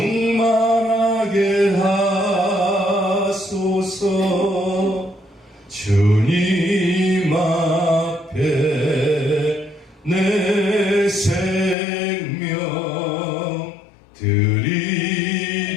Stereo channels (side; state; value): right; drops out; at 11.8 s